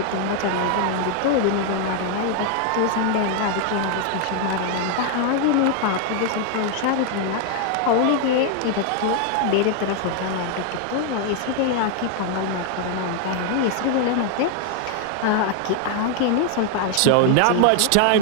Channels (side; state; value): both; different; correlation 0.00